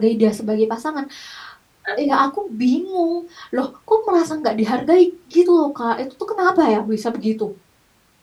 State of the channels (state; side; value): identical; both; correlation 1.00